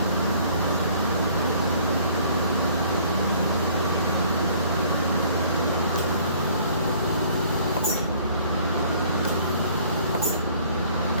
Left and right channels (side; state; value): both; inverted; correlation -0.56